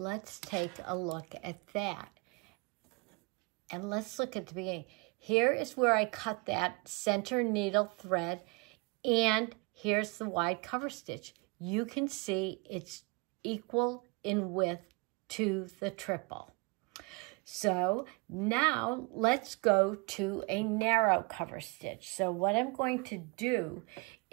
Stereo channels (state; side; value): quieter; left; 30.1 dB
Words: take a look at that. And let's look at the beginning. Here is where I cut that center needle thread, and here's the wide cover stitch. You can see it's equal in width to the triple. So now let's go to a narrow cover stitch. So what I'm going to do